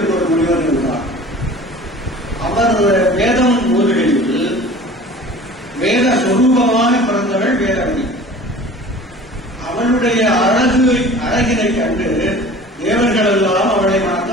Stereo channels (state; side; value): normal; both; correlation 0.43